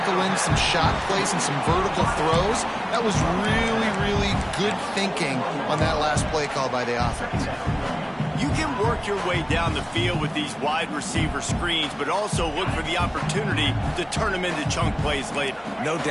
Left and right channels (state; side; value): identical; both; correlation 1.00